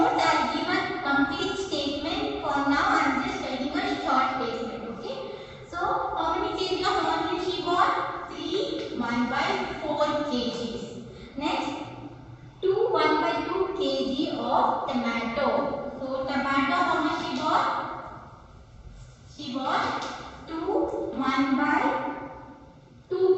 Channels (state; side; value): identical; both; correlation 1.00